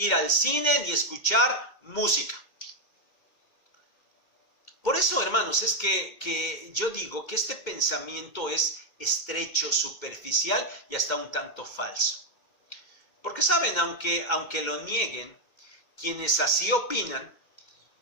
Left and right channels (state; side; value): late; right; 2.1 ms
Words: al cine ni escuchar música. Por eso, hermanos, es que yo digo que este pensamiento es estrecho, superficial y hasta un tanto falso. Porque saben, aunque lo nieguen, quienes así opinan